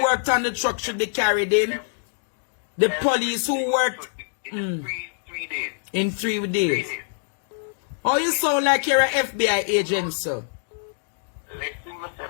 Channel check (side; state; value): right; silent; digital silence